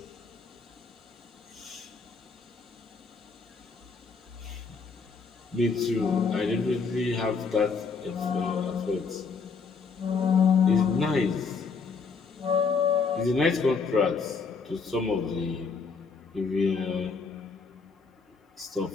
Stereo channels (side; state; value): right; quieter; 5.0 dB